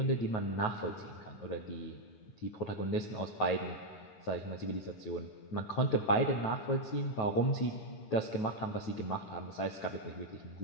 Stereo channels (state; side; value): late; right; 9.3 ms